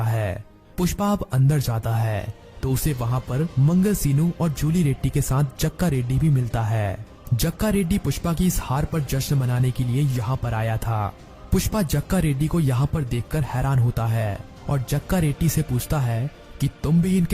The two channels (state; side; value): identical; both; correlation 1.00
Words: है। पुष्पा अब अंदर जाता है तो उसे वहां पर मंगल सीनू और जूली रेड्डी के साथ जक्का रेड्डी भी मिलता है। जक्का रेड्डी पुष्पा की इस हार पर जश्न मनाने के लिए यहाँ पर आया था। पुष्पा जक्का रेड्डी को यहाँ पर देखकर हैरान होता है और जक्का रेड्डी से पूछता है कि तुम भी